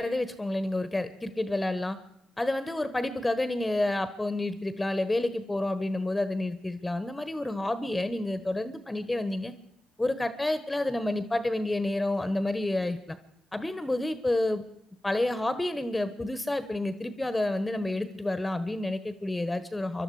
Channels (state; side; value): normal; both; correlation 0.96